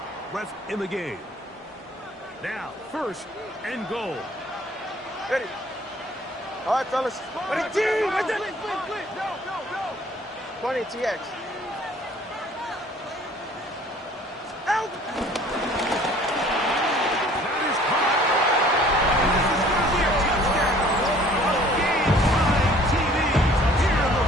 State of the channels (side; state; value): both; normal; correlation 0.53